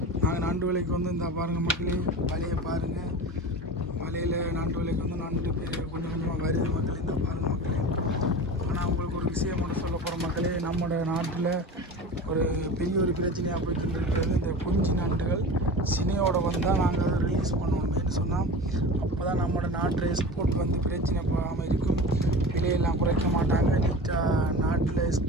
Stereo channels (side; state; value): both; normal; correlation 0.33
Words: நாங்கள் நண்டு விலைக்கு வந்து இந்த பாருங்கள் மக்களே, வலையை பாருங்கள். வலையில் நண்டு விலைக்கு வந்து நண்டு கொஞ்சம் கொஞ்சமாக வருது மக்களே. இந்த பாருங்கள் மக்களே. ஆனால் உங்களுக்கு ஒரு விஷயம் மட்டும் சொல்ல போகிற மக்களே, நம்மளோட நாட்டில் ஒரு பெரிய ஒரு பிரச்சனையாக போயிட்டு இருக்கிறது இந்த குஞ்சு நண்டுகள் சினையோட வந்தால் நாங்கள் அதை ரிலீஸ் பண்ணணுமேனு சொன்னால் அப்போ தான் நம்மளோட நாட்டில் எக்ஸ்போர்ட் வந்து பிரச்சனை போகாமல் இருக்கும். விலையெல்லாம் குறைக்க மாட்டாங்க. நீட்டாக நாட்டில்